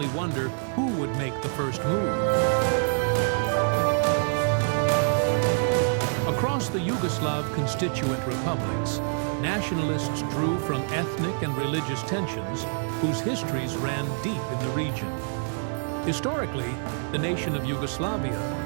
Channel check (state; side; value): silent; left; digital silence